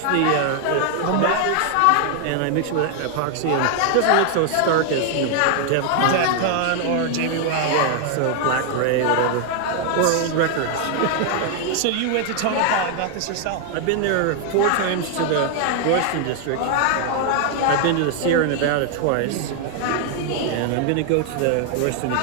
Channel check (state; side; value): different; both; correlation 0.00